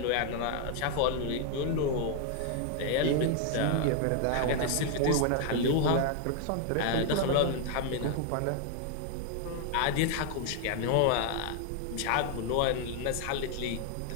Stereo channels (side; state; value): both; different; correlation 0.00